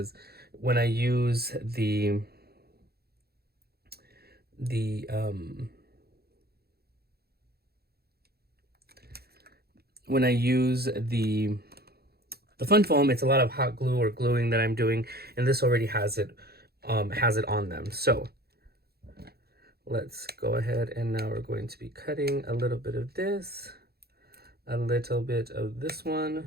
when I use the fun foam, it's a lot of hot glue or gluing that I'm doing, and this already has it on them. So let's go ahead, and now we're going to be cutting a little bit of this, a little bit of this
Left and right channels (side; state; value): left; late; 0.46 ms